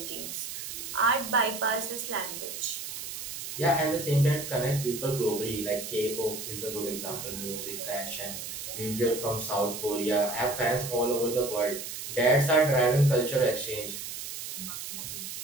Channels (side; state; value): right; noise; hiss, 7 dB below the sound